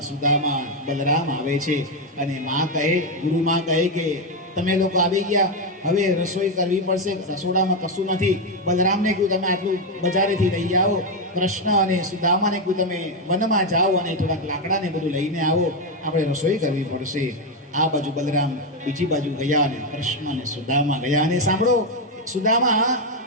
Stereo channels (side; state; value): both; normal; correlation 0.06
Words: સુદામા, બલરામ આવે છે અને માં કહે, ગુરુમાં કહે કે તમે લોકો આવી ગયા, હવે રસોઈ કરવી પડશે, રસોડામાં કશું નથી. બલરામને કહ્યું તમે આટલું બજારેથી લઈ આવો. કૃષ્ણ અને સુદામાને કહ્યું તમે વનમાં જાઓ અને થોડાક લાકડાને બધું લઈને આવો, આપણે રસોઈ કરવી પડશે. આ બાજુ બલરામ બીજી બાજુ ગયા અને કૃષ્ણ અને સુદામા ગયા. અને સાંભળો, સુદામા